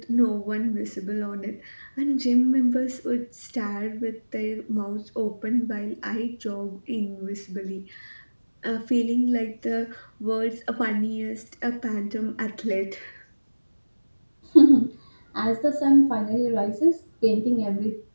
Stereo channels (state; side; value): inverted; both; correlation -1.00